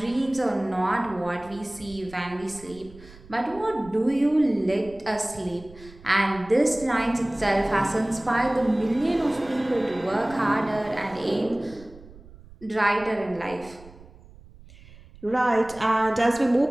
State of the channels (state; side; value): noise; right; rumble, 21 dB below the sound